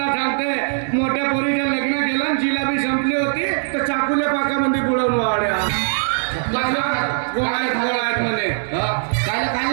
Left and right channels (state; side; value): silent; left; 65 dB below the other